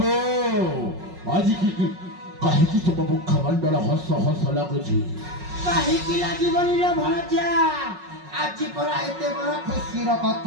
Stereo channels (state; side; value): late; left; 5.4 ms